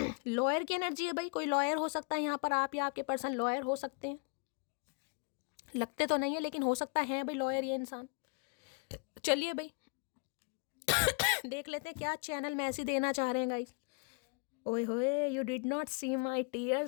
लॉयर की एनर्जी है भाई, कोई लॉयर हो सकता है यहाँ पर, आप या आपके पर्सन लॉयर हो सकते हैं, लगते तो नहीं है लेकिन हो सकता है भाई लॉयर ये इंसान। चलिए भाई देख लेते हैं क्या चैनल मैसेज देना चाह रहे हैं गाइस। ओए होए, you did not see my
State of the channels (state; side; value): quieter; right; 35.9 dB